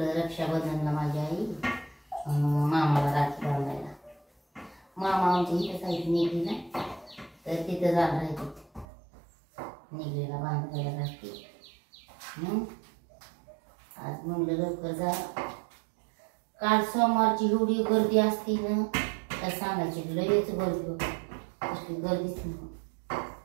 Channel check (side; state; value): left; drops out; at 8.8 s